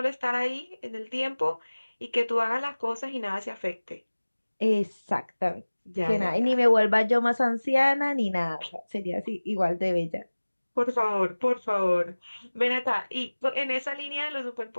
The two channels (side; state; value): both; inverted; correlation -1.00